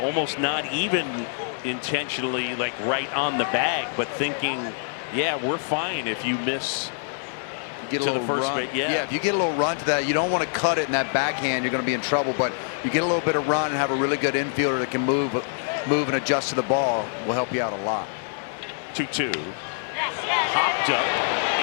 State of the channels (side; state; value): right; silent; 57 dB below the other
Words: not even intentionally like right on the bag, but thinking, yeah, we're fine if you miss get to the first base. Yeah, if you get a little run to that, you don't want to cut it in that backhand, you're going to be in trouble. But you get a little bit of run and have a really good infielder that can move and adjust to the ball, will help you out a lot. 2-2. Hopped up